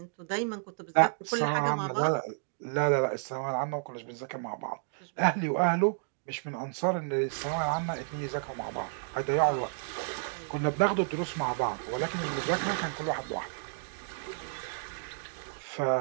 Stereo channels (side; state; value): left; silent; digital silence